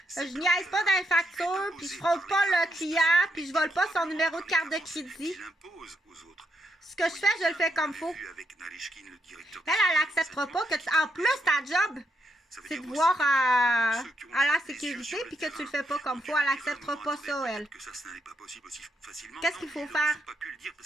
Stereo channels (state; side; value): normal; both; correlation 0.80